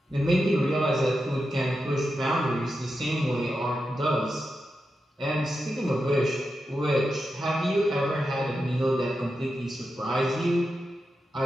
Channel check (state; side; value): normal; both; correlation 0.89